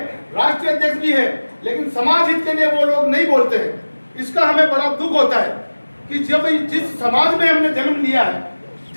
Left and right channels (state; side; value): inverted; both; correlation -1.00